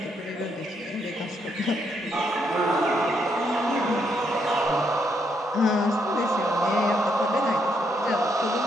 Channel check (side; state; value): both; normal; correlation 0.75